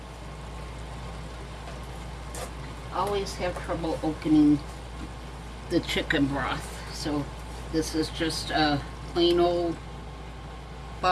Always have trouble opening the chicken broth, so this is just a plain old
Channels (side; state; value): both; identical; correlation 1.00